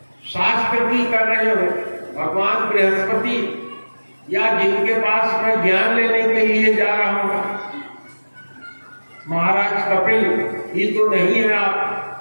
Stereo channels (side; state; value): both; inverted; correlation -1.00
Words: शास्त्र की कर रहे हो, भगवान बृहस्पति या जिनके पास मैं ज्ञान लेने के लिए जा रहा हूं, महाराज कपिल ही तो नहीं है आप।